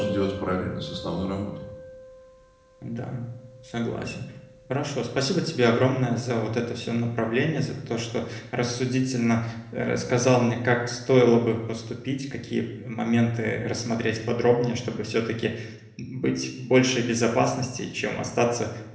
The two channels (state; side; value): identical; both; correlation 1.00